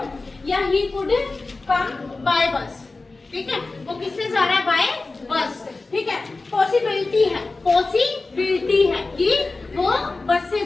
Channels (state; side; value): quieter; right; 3.5 dB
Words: या ही कुड कम बाय बस। ठीक है, वो किससे जा रहा है, बाय बस। ठीक है, पॉसिबिलिटी है कि वो बस से